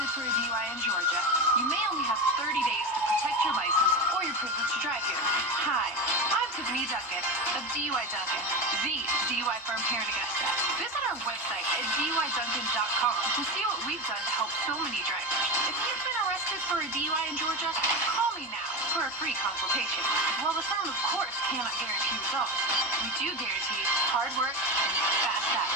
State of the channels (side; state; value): both; normal; correlation 0.21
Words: for a DUI in Georgia, you may only have 30 days to protect your license or your privilege to drive here. Hi, I'm Tiffany Duncan of DUI Duncan, the DUI firm here in Augusta. Visit our website at DUIDuncan.com to see what we've done to help so many drivers. If you've been arrested for a DUI in Georgia, call me now for a free consultation. While the firm, of course, cannot guarantee results, we do guarantee hard work and fast